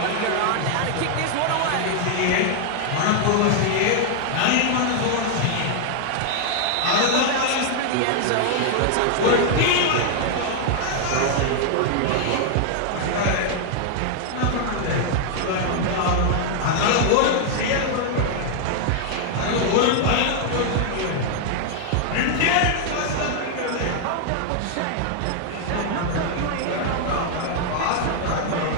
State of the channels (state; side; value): different; both; correlation 0.00